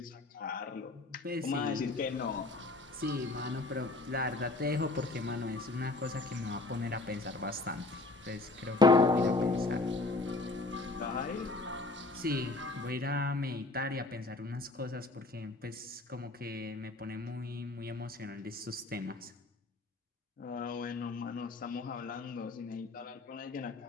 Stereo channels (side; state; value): right; quieter; 3.2 dB